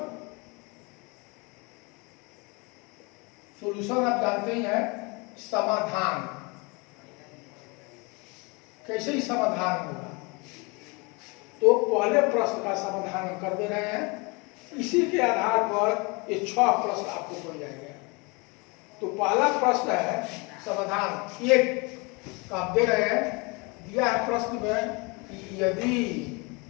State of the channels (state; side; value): quieter; right; 28.8 dB